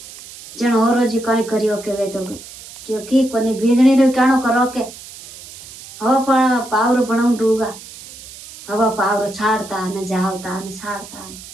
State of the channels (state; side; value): noise; right; hiss, 17 dB below the sound